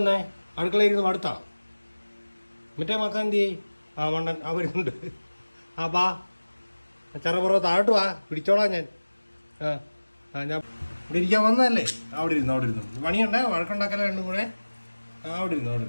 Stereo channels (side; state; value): both; inverted; correlation -1.00